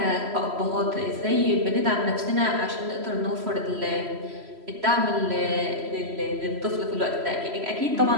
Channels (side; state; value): left; late; 3.0 ms